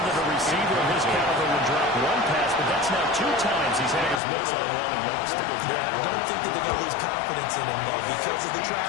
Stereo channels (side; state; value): right; drops out; at 4.2 s